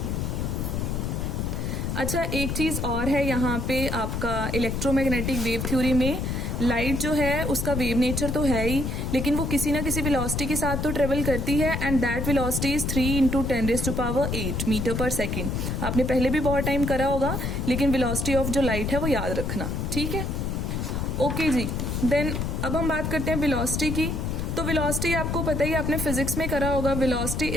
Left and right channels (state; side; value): noise; left; rumble, 1 dB below the sound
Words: अच्छा, एक चीज और है यहाँ पे आपका इलेक्ट्रोमैग्नेटिक वेव थ्योरी में, लाइट जो है उसका वेव नेचर तो है ही, लेकिन वो किसी ना किसी वेलोसिटी के साथ तो ट्रेवल करती है, and that velocity is 3 × 10⁸ metre per second. आपने पहले भी बहुत टाइम करा होगा, लेकिन वेलोसिटी ऑफ जो लाइट है वो याद रखना, ठीक है। ओके जी, देन अब हम बात करते हैं वेलोसिटी की। तो वेलोसिटी आपको पता ही, आपने फिजिक्स में करा होगा, velocity